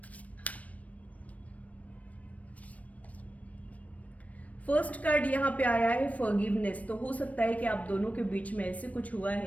फर्स्ट कार्ड यहाँ पे आया है फॉरगिवनेस। तो हो सकता है कि आप दोनों के बीच में ऐसे कुछ हुआ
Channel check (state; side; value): late; right; 0.068 ms